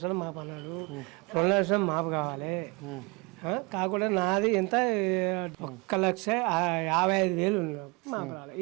మాపు అన్నాడు 2 లక్షలు మాపు కావాలి కాకుండా నాది ఎంత 1,55,000 మాపు రావాలి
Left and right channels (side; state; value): left; quieter; 28.0 dB